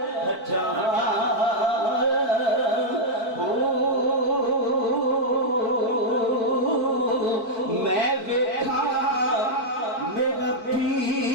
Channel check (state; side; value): late; right; 4.5 ms